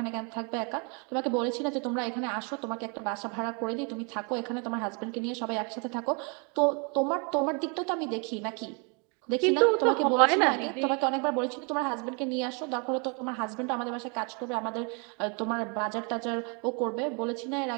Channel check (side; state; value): left; quieter; 34.4 dB